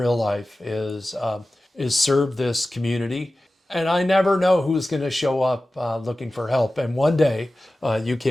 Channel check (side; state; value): both; normal; correlation 0.95